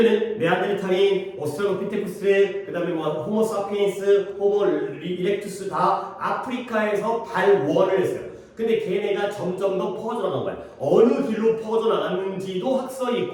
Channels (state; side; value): identical; both; correlation 1.00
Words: 네안데르탈인, 오스트랄로피테쿠스, 그 다음에 뭐 호모사피엔스, 호모 이렉투스 다 아프리카에서 발원을 했어요. 근데 걔네가 점점 더 퍼져나간 거야. 어느 길로 퍼져나갔는지도 학설이